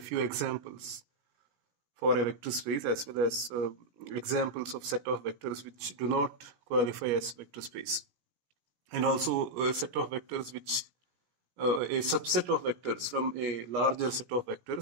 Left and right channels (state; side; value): late; left; 17 ms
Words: examples for a vector space as well as examples of set of vectors which do not qualify as vector space. And also a set of vectors which a subset of vectors from a larger set of